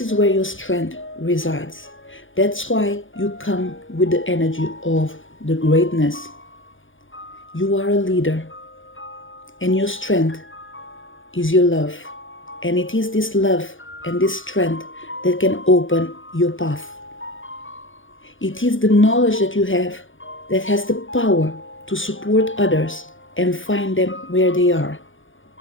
is where your strength resides. That's why you come with the energy of the greatness. You are a leader, and your strength is your love. And it is this love and this strength that can open your path. It is the knowledge that you have that has the power to support others and find them where they are.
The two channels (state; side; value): late; right; 0.57 ms